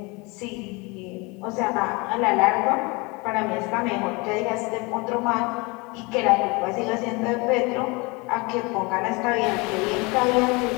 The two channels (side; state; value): right; quieter; 26.9 dB